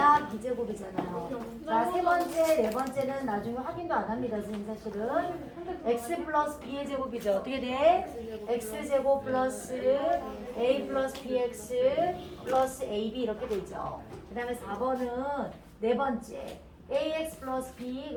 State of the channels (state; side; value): identical; both; correlation 1.00